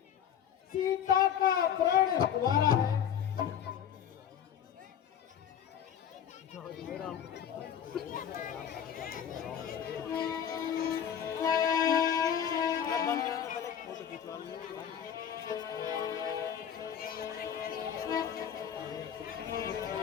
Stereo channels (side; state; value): right; quieter; 8.9 dB